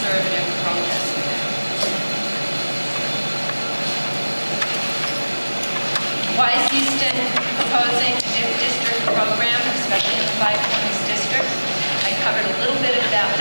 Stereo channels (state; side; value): inverted; both; correlation -1.00